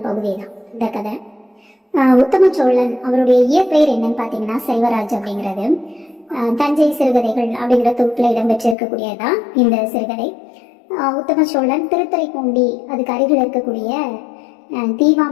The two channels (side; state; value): right; drops out; at 8.8 s